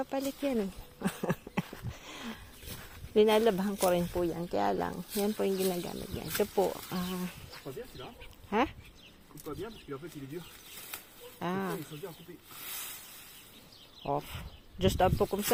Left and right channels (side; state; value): both; identical; correlation 1.00